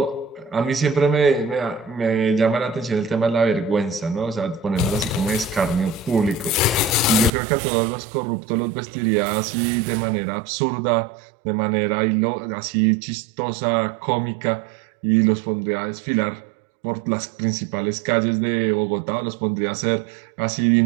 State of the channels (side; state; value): left; drops out; at 7.3 s